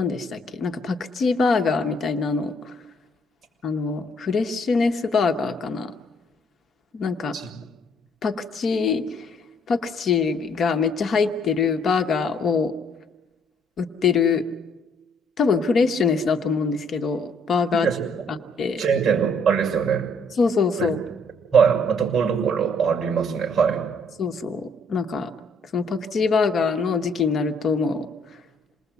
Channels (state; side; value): normal; both; correlation 0.65